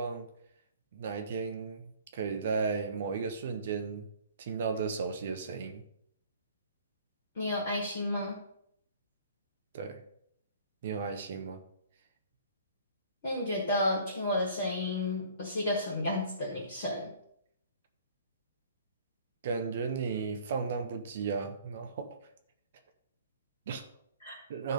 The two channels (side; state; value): both; inverted; correlation -0.52